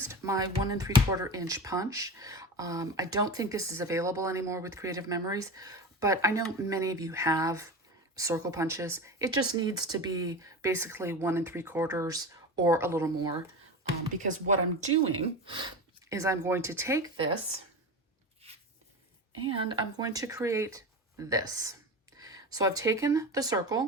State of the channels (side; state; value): both; normal; correlation 0.27